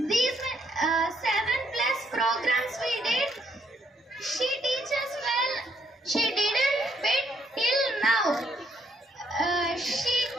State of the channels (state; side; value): normal; both; correlation 0.71